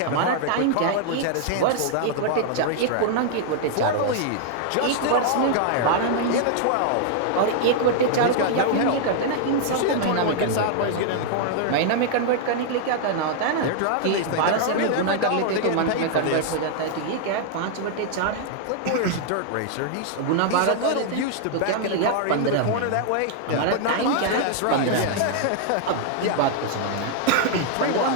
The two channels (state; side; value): different; both; correlation -0.01